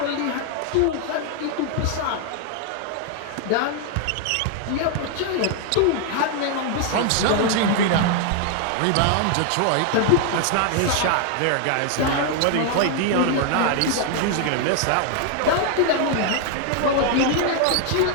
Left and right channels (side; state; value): both; different; correlation 0.00